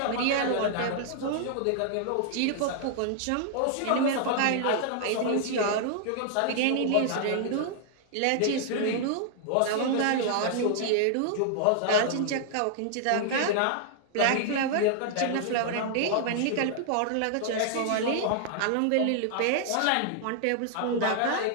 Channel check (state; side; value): different; both; correlation 0.00